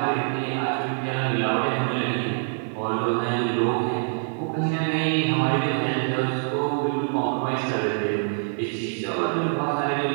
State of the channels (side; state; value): left; silent; 57 dB below the other